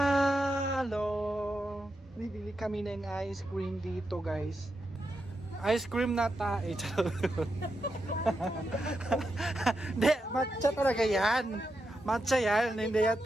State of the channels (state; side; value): normal; both; correlation 0.86